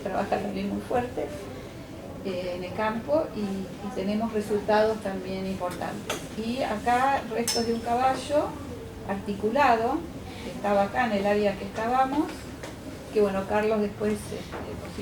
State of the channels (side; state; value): both; identical; correlation 1.00